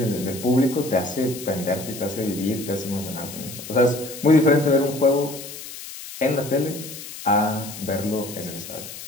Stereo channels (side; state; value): left; noise; hiss, 12 dB below the sound